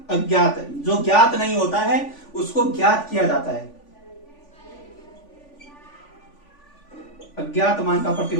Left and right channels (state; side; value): late; right; 3.5 ms